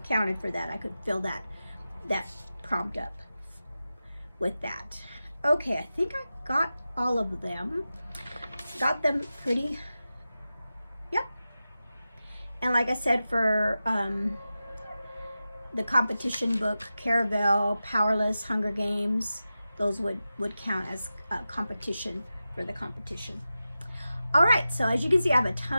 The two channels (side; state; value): both; inverted; correlation -0.93